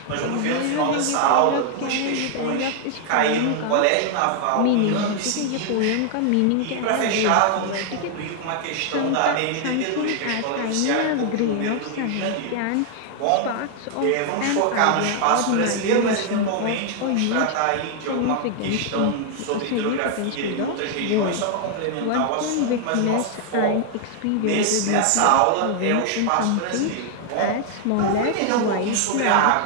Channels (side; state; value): both; different; correlation 0.00